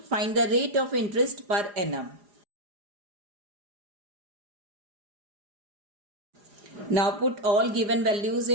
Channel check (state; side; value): late; left; 4.9 ms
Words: Find the rate of interest per annum. Now put all given values